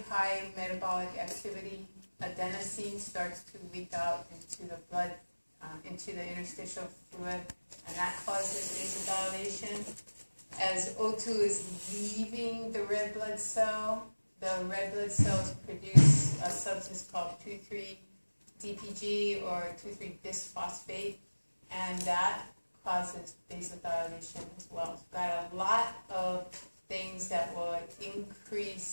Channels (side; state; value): both; inverted; correlation -1.00